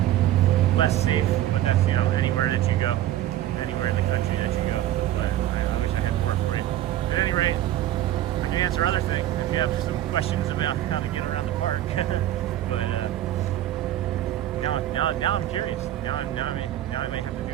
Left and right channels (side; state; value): left; quieter; 13.2 dB